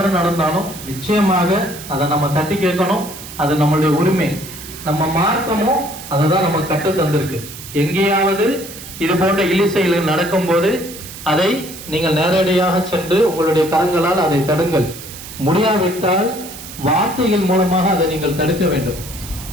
நடந்தாலும் நிச்சயமாக அதை நம்ம தட்டி கேட்கணும். அது நம்மளுடைய உரிமை. நம்ம மார்க்கமும் அதை தான் நமக்கு கற்று தந்திருக்கு. எங்கேயாவது இது போன்ற இழிசெயல் நடக்கும் போது அதை நீங்கள் நேரடியாக சென்று உங்களுடைய கரங்களால் அதை தடுங்கள். முடியாவிட்டால் வார்த்தைகள் மூலமாக அதை நீங்கள் தடுக்க வேண்டும்.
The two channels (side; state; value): right; noise; hiss, 13 dB below the sound